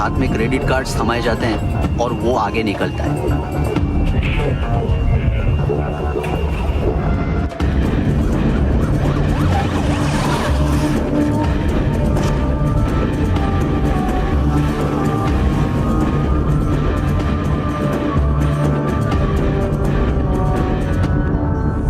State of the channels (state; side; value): identical; both; correlation 1.00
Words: में क्रेडिट कार्ड्स थमाए जाते हैं और वो आगे निकलता है।